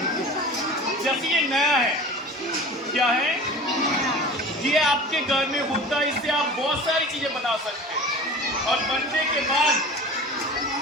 जैसे ये नया है, क्या है ये आपके घर में होता है, इससे आप बहुत सारी चीजें बना सकते हैं और बनने के बाद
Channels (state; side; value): normal; both; correlation 0.38